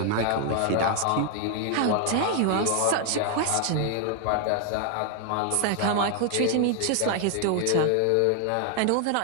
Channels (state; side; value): different; both; correlation 0.00